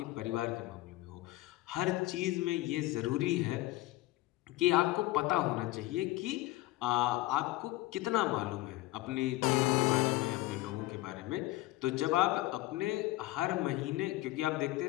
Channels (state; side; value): quieter; right; 18.0 dB